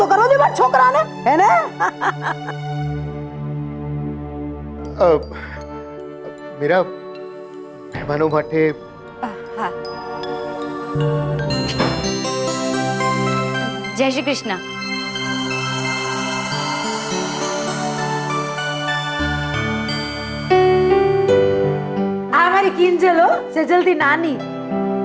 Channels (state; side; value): identical; both; correlation 1.00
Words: કરવો દે મારા છોકરાને, હે ને? મીરા, મહેમાનો માટે જય શ્રી કૃષ્ણ. આ મારી કિંજલ હો, સેજલથી નાની.